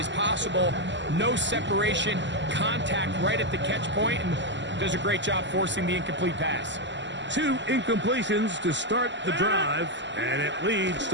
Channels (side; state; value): left; late; 0.53 ms